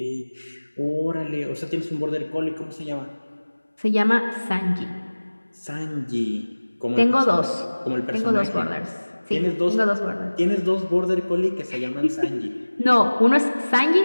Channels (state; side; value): inverted; both; correlation -1.00